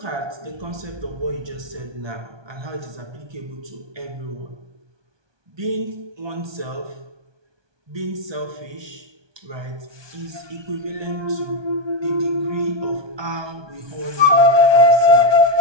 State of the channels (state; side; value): late; left; 1.2 ms